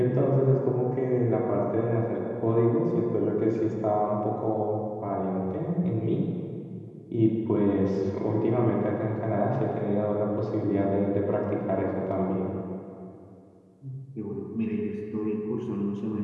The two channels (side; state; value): both; identical; correlation 1.00